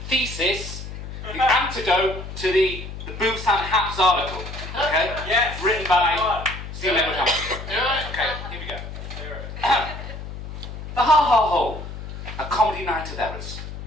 thesis, the antidote to the Busan Haps article. Okay? Yes. Written by Stephen Edward Hamster. Okay, here we go. The Ha-Ha Hole, a comedy night of errors,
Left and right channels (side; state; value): left; noise; hum, 9 dB below the sound